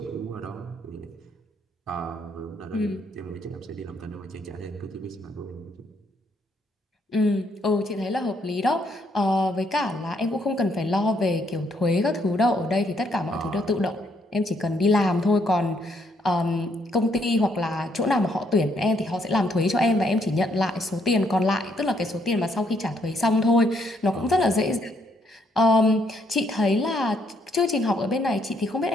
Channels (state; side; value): normal; both; correlation 0.72